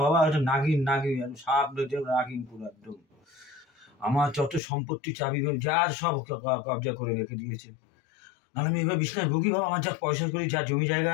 বাবা, এটা নাগিন সাপ নাগিন পুরো একদম। আমার যত সম্পত্তি চাবি যার সব কবজা করে রেখে দিয়েছে। আর আমি এবার বিছনায় ভুগি বাবা, আমার যা পয়সা করি, যা জমি জায়গা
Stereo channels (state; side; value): drops out; right; at 4.6 s